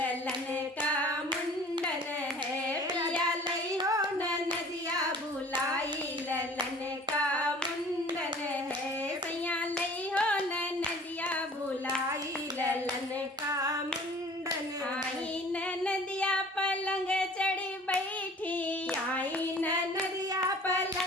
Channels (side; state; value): both; normal; correlation 0.48